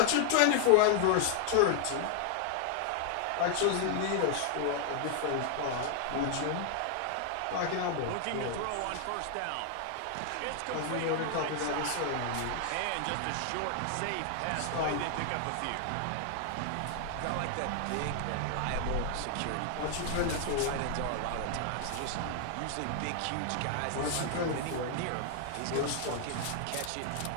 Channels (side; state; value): both; different; correlation 0.00